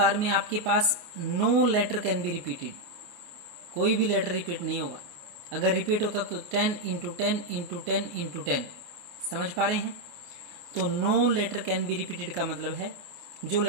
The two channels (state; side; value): late; left; 28 ms